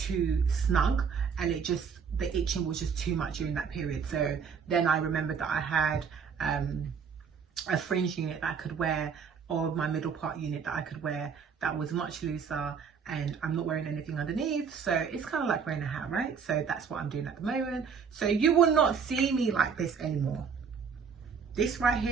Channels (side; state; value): left; quieter; 6.3 dB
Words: snug, and the itching was just too much during that period. So then I remembered that I had a fringe unit that I could wear, or my middle part unit that I could wear, that was much looser, and I'm not wearing anything underneath, so it's kind of like wearing a hat, right? So that's what I'm doing at the moment. So you will not see me like this anymore. This right